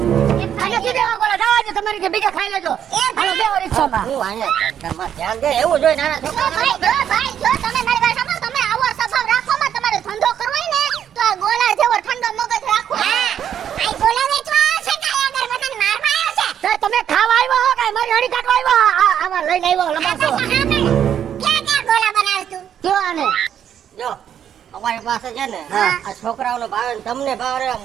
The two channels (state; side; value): quieter; left; 9.4 dB